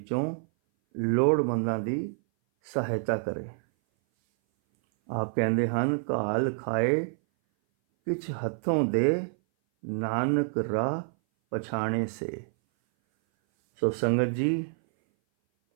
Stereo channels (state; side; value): silent; left; 58 dB below the other